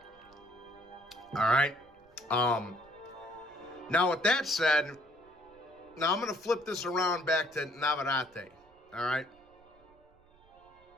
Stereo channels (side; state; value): right; noise; rumble, 30 dB below the sound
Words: All right. Now with that said, now I'm going to flip this around back to Navarrete. All right.